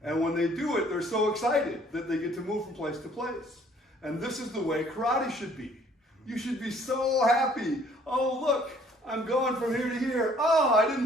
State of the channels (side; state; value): both; normal; correlation 0.59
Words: And when they do it, they're so excited that they get to move from place to place. And this is the way karate should be. You should be so happy. Oh, look, I'm going from here to here. Oh, I